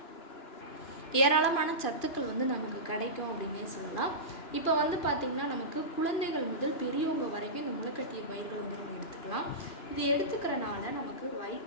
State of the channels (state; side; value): late; right; 2.5 ms